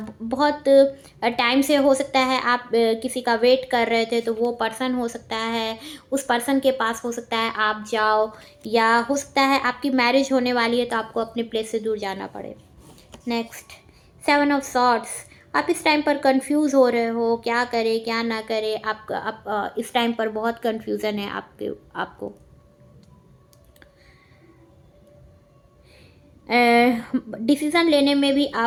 बहुत टाइम से हो सकता है आप किसी का वेट कर रहे थे, तो वो पर्सन हो सकता है, उस पर्सन के पास हो सकता है आप जाओ, या हो सकता है आपकी मैरिज होने वाली है तो आपको अपने प्लेस से दूर जाना पड़े। नेक्स्ट, 7 ऑफ सॉर्ड्स, आप इस टाइम पर कंफ्यूज हो रहे हो, क्या करें क्या ना करें, आप इस टाइम पर बहुत कंफ्यूजन है आपको। डिसीज़न लेने में भी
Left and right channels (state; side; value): identical; both; correlation 1.00